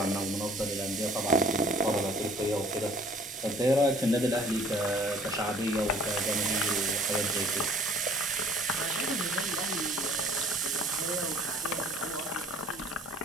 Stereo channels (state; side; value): normal; both; correlation 0.54